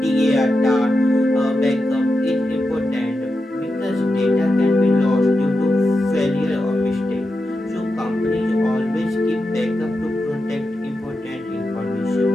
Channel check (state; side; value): normal; both; correlation 0.89